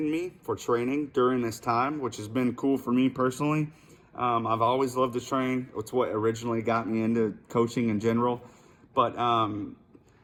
me for training during this time, which has been cool for me personally. I've always loved to train. It's what originally got me into coaching in general. But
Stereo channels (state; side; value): identical; both; correlation 1.00